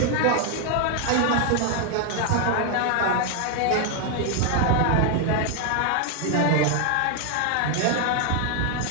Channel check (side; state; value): both; different; correlation 0.00